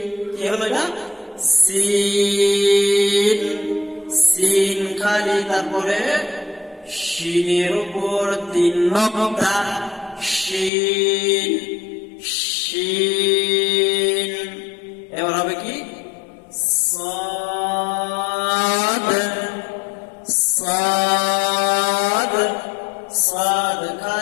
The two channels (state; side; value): drops out; right; at 10.7 s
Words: কি হলো এটা? সিন, সিন খালি, তারপরে শিনের উপর 3 নকতা, শিন শিন। এবার হবে কি? সাদ সাদ, সাদ